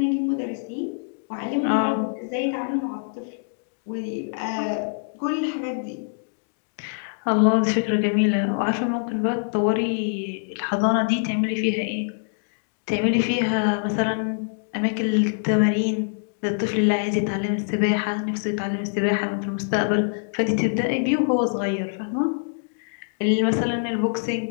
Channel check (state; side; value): silent; right; digital silence